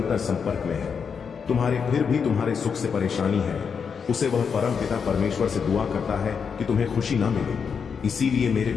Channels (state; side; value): quieter; right; 6.3 dB